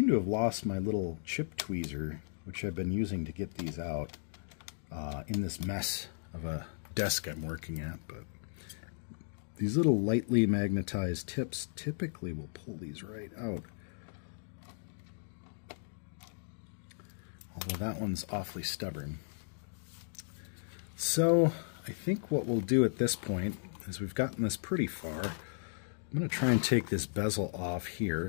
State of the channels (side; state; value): right; silent; digital silence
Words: to have lost my little chip tweezer, which I've been using to get these out in this mess of a desk I'm working at. But these little lightly magnetized tips typically will pull these right out. Although that one's awfully stubborn. So I think what we'll do at this point is we've gotten this pretty far. I'm going to try and take this bezel off here